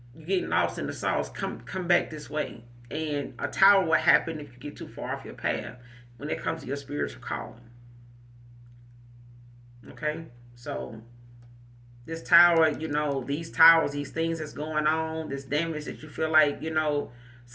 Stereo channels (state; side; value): identical; both; correlation 1.00